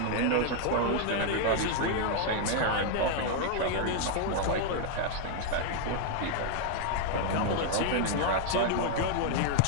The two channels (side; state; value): both; different; correlation 0.00